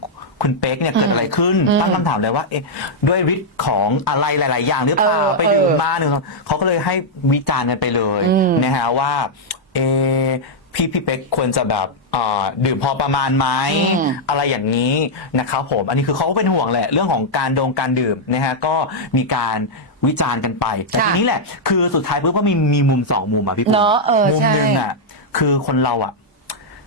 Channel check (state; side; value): normal; both; correlation -0.05